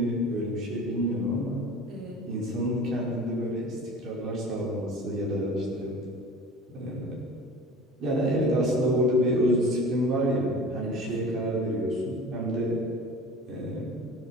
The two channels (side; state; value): both; normal; correlation 0.39